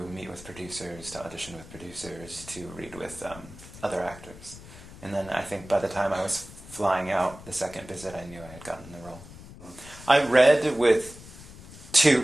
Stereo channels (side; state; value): left; noise; rumble, 17 dB below the sound